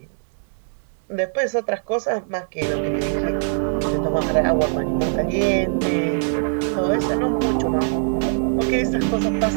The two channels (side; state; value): left; silent; digital silence